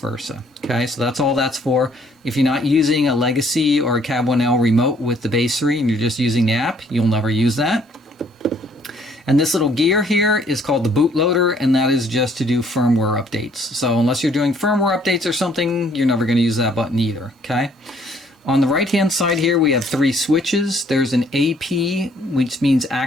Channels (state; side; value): normal; both; correlation 0.63